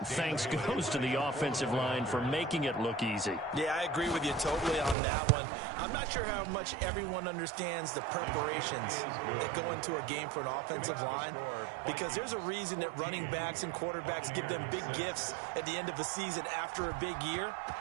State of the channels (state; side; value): drops out; left; at 5.0 s